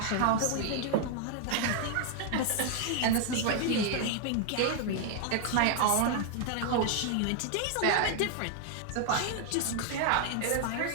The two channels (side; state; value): both; different; correlation 0.00